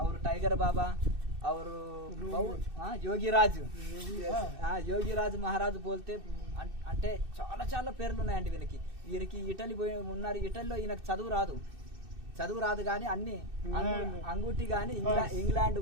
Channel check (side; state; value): left; late; 2.6 ms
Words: और टाइगर बाबा और యోగిరాజ్ యోగిరాజ్ మహారాజ్ బోల్తే అంటే చాలా చాలా పేర్లు ఉన్నాయండి వీరికి ఇటలీ పోయి ఉన్నారు. ఇటలీలో ఈయనకు చదువు రాదు కానీ అన్ని అంగుటి కానీ ఇంగ్లాండ్